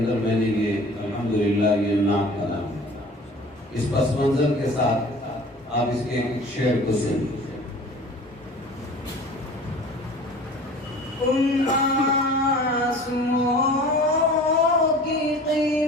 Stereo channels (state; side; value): normal; both; correlation 0.44